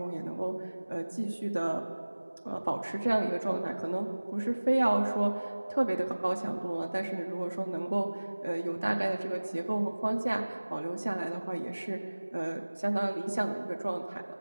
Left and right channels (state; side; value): inverted; both; correlation -1.00